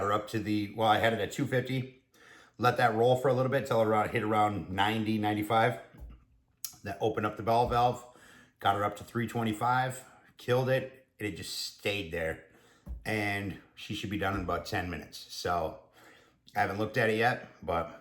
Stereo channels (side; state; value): both; identical; correlation 1.00